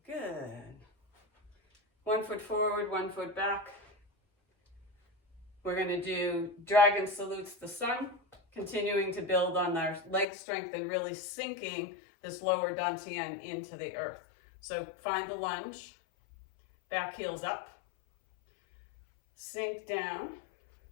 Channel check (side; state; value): right; drops out; at 10.2 s